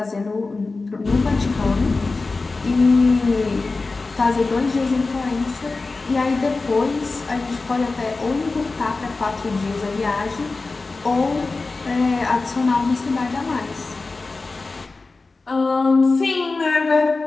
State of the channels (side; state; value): right; quieter; 3.7 dB